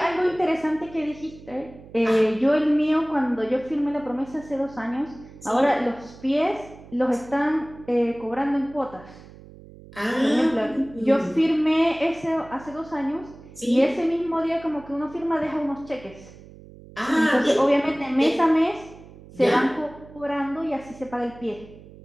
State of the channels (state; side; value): noise; right; hum, 20 dB below the sound